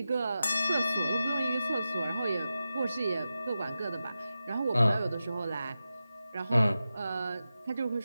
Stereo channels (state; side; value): inverted; both; correlation -0.92